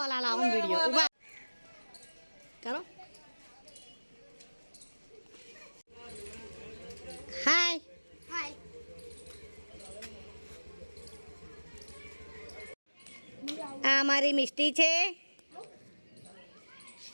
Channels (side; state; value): both; inverted; correlation -1.00